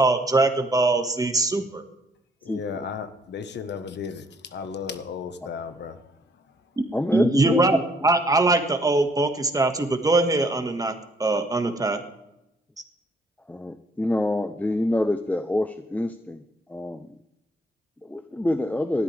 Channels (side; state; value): both; normal; correlation 0.65